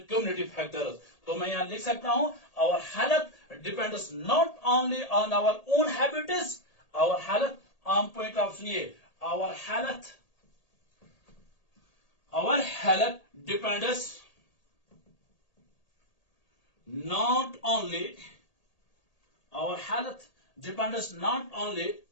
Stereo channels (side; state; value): right; late; 1.8 ms